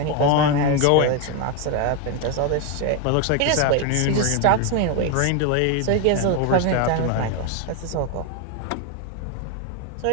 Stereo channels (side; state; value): both; different; correlation 0.01